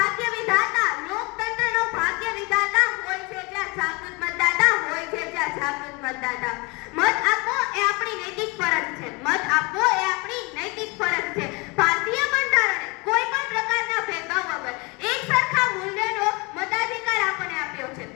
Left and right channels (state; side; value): quieter; right; 27.6 dB